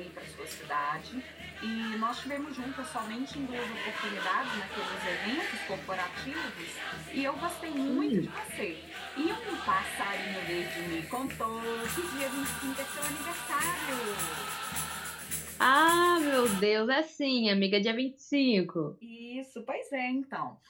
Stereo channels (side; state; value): both; identical; correlation 1.00